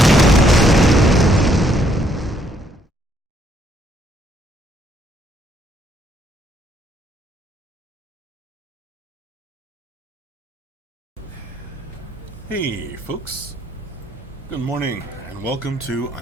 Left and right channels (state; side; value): normal; both; correlation 0.70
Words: Hey folks, good morning and welcome to